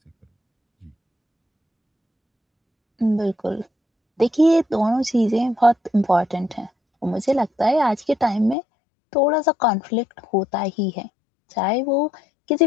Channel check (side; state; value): right; drops out; at 8.6 s